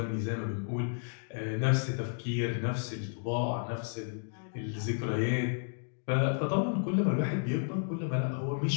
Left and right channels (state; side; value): silent; right; digital silence